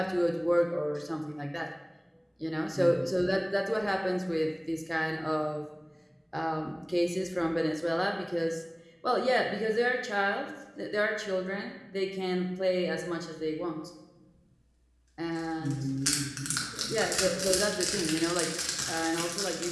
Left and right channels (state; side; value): identical; both; correlation 1.00